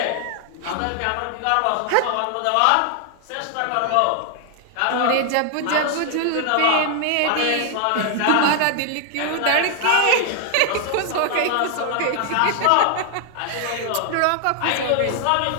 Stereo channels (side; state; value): both; different; correlation 0.00